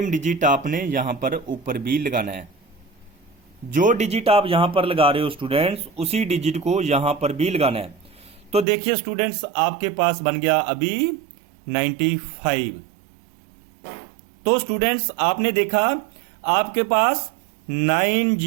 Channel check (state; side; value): drops out; left; at 8.7 s